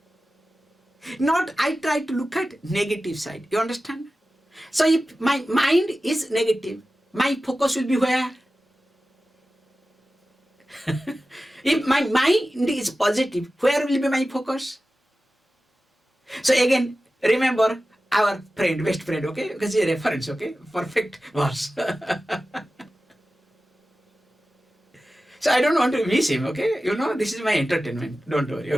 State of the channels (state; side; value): normal; both; correlation 0.95